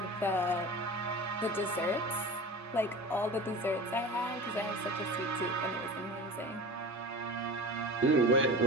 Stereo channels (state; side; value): normal; both; correlation 0.34